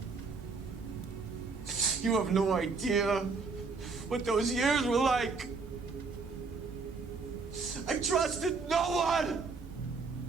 You have no idea what those years were like. I trusted no one.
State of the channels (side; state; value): left; quieter; 4.5 dB